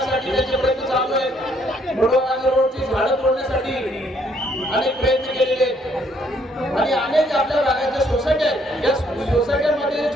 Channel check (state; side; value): normal; both; correlation 0.67